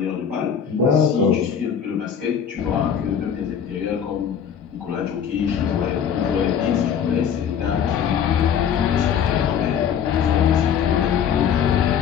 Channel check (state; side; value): quieter; right; 8.0 dB